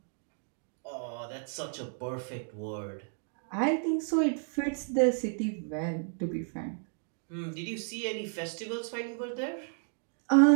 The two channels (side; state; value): left; silent; 56 dB below the other